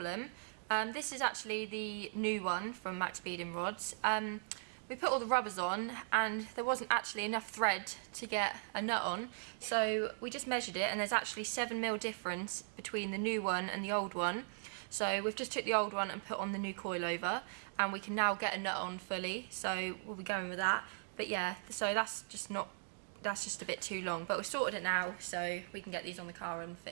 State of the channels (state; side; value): silent; left; digital silence